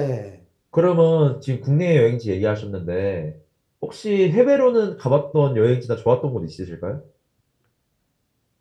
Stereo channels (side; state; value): both; identical; correlation 1.00